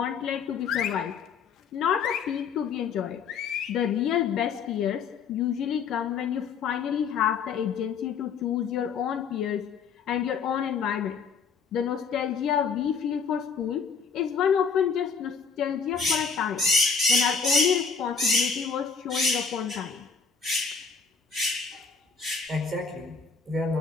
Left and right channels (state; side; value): quieter; right; 5.7 dB